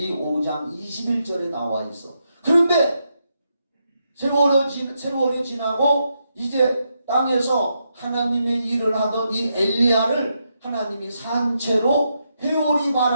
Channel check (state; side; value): inverted; both; correlation -0.82